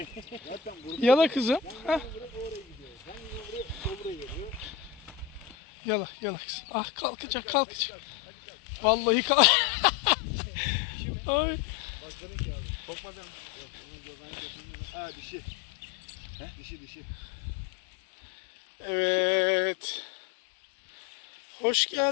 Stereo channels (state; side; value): drops out; right; at 5.6 s